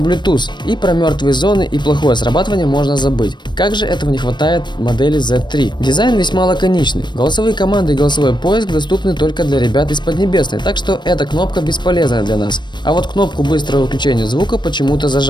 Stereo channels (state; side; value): late; right; 0.22 ms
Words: и про мертвые зоны и плохое срабатывание можно забыть. Как же этого не хватает модели Z3? Дизайн весьма лаконичный. Голосовые команды и голосовой поиск доступны только для ребят из Поднебесной, так что эта кнопка бесполезная для нас. А вот кнопку быстрого выключения звука почему-то